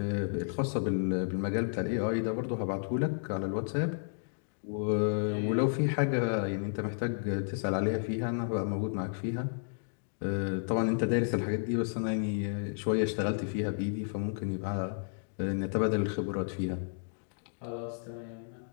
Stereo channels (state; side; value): silent; right; digital silence